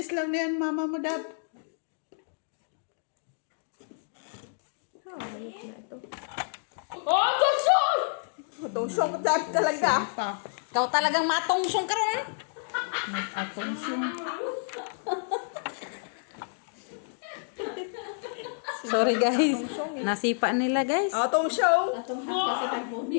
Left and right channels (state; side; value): silent; right; digital silence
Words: lang na yan, mama mo, Dab. Ayos na ito. Oh, tusong! Tusong ka talaga. Pa. Ikaw talagang matungsong ka ron. Atong siyong. Sorry guys. Nasipa nila guys. Atong show. Atong hapa sa